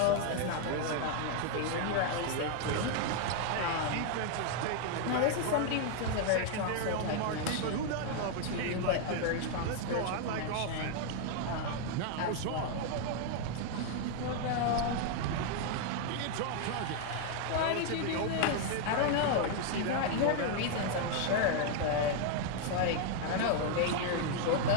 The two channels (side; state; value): both; different; correlation 0.00